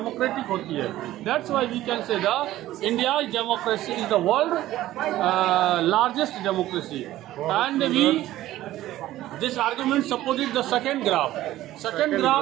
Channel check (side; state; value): left; quieter; 14.8 dB